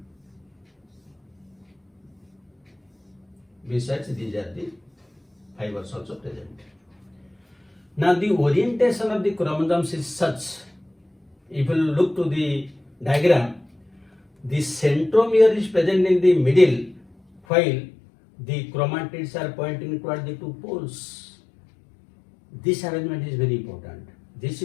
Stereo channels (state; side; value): drops out; right; at 17.4 s